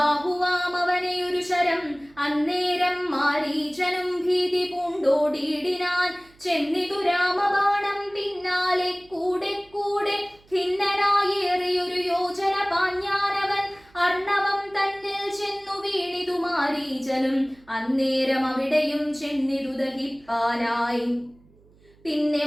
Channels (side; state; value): right; noise; hum, 29 dB below the sound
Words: ഒരു ശരം. അന്നേരം മാരീചനും ഭീതി പൂണ്ടോടി ഓടിയിടിനാൻ. ചെന്നിതു രാമബാണം പിന്നാലെ കൂടെ കൂടെ ഖിന്നനായേറിയൊരു യോജന പാഞ്ഞാനവൻ. അർണവം തന്നിൽ ചെന്നു വീണിതു മാരീചനും. അന്നേരം അവിടെയും ചെന്നിതു ദഹിപ്പാനായി. പിന്നെ